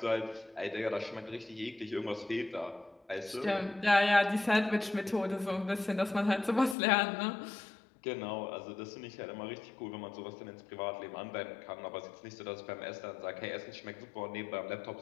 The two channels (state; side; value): drops out; right; at 6.8 s